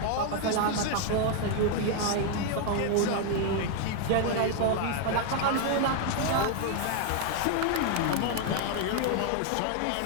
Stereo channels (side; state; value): both; different; correlation 0.00